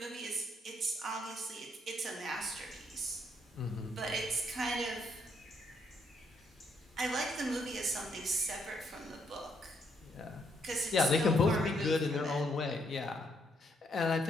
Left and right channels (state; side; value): normal; both; correlation 0.73